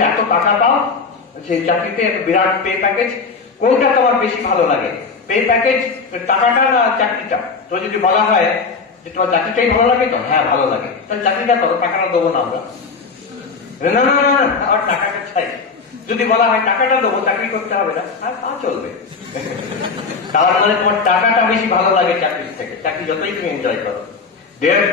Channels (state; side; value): quieter; right; 4.8 dB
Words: এত টাকা পাও সেই চাকরিতে, বিরাট পে প্যাকেজ, কোনটা তোমার বেশি ভালো লাগে? পে প্যাকেজ, টাকাটা না চাকরিটা? তো যদি বলা হয় যে তোমার চাকরিটাই ভালো লাগে, তো হ্যাঁ ভালো লাগে, তাহলে চাকরিটা করো, টাকাটা দেবো না আমরা। না না না, আমার টাকাটা চাই। যদি বলা হয় টাকাটা দেবো, চাকরি করতে হবে না, আর তা চলবে। তার মানে তোমার টাকাটা বেশি ভালো লাগে চাকরির থেকে, চাকরি যতই তুমি এনজয় করো।